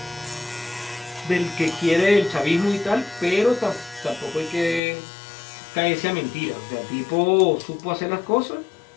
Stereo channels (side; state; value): right; drops out; at 4.8 s